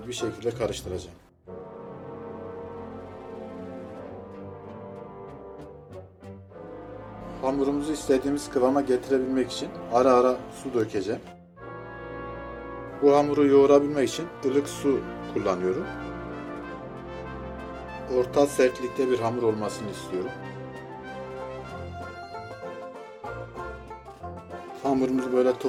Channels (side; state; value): both; identical; correlation 1.00